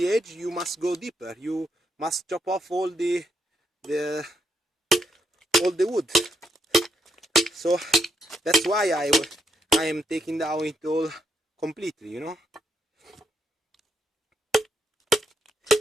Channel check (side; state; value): both; normal; correlation 0.78